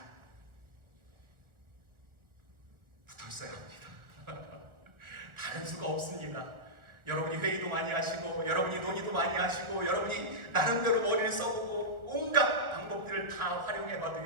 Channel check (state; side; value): late; left; 1.5 ms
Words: 붙어 있어야 합니다. 다른 수가 없습니다. 여러분이 회의도 많이 하시고 여러분이 논의도 많이 하시고 여러분이 나름대로 머리를 써보고 온갖 방법들을 다